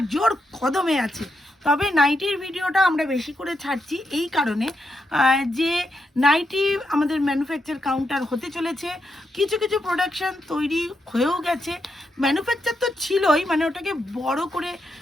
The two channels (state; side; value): normal; both; correlation 0.83